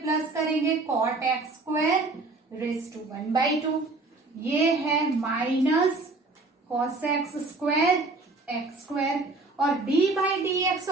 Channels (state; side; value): quieter; left; 3.4 dB